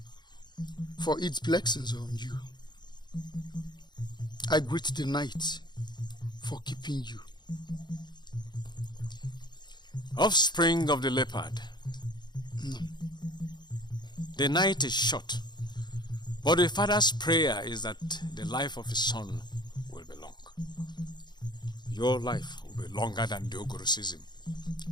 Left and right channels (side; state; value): right; late; 0.21 ms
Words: for its blessings on you. I greet the night for keeping you. Offspring of the leopard. No. The night is short, but the father's prayer is that the life of his son will be long. your life will be longer than the Ogoro season.